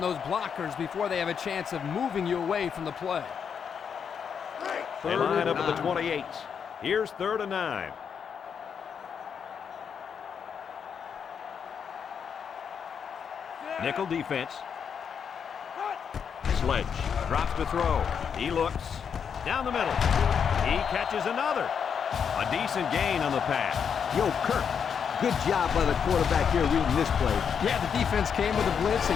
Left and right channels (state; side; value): quieter; right; 7.1 dB